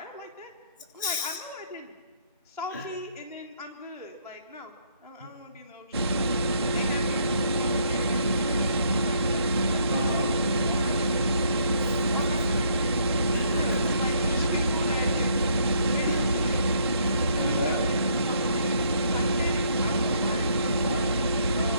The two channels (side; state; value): both; inverted; correlation -0.68